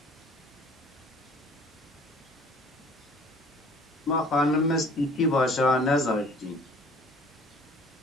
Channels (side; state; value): both; normal; correlation 0.51